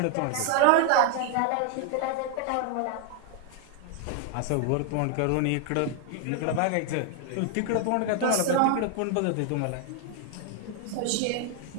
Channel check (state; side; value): different; both; correlation 0.00